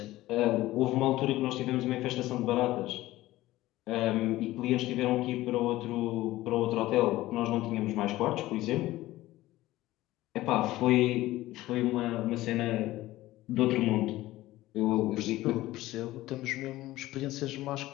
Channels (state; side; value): quieter; right; 16.8 dB